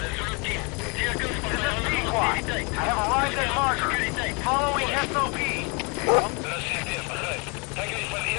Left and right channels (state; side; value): quieter; right; 31.8 dB